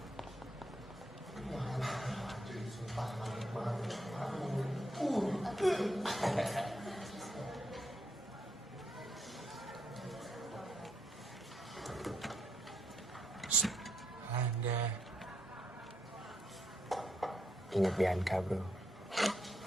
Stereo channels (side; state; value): both; normal; correlation 0.78